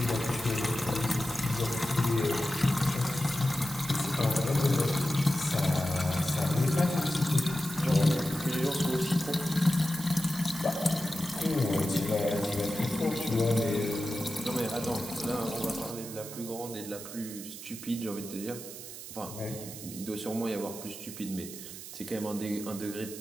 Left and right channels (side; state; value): right; noise; hiss, 11 dB below the sound